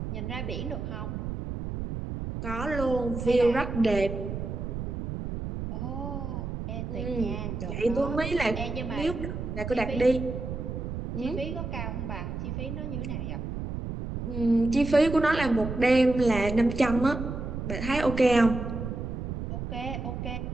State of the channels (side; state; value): right; noise; rumble, 5 dB below the sound